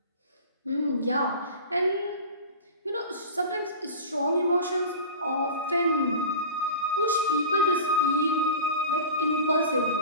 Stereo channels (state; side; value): inverted; both; correlation -0.33